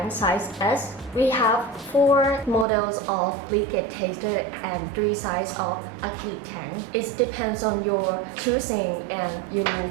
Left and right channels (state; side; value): drops out; left; at 2.7 s